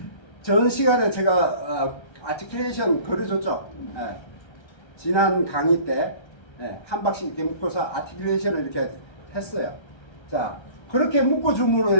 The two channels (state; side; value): late; right; 1.3 ms